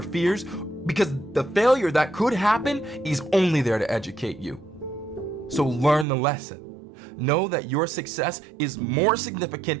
fears? Because the failure that could happen is only there to educate you. So learn the lesson. Know that your success is more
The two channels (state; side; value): drops out; left; at 6.1 s